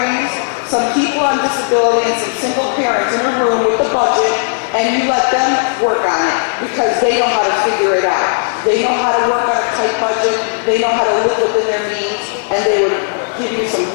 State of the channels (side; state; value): right; silent; digital silence